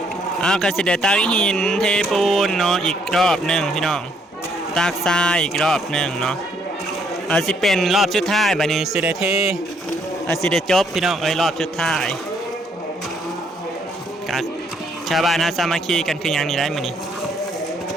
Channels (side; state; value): both; normal; correlation 0.69